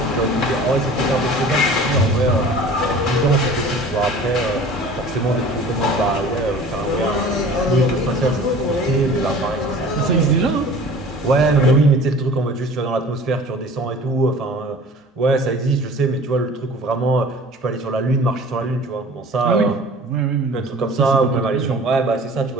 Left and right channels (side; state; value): both; normal; correlation 0.44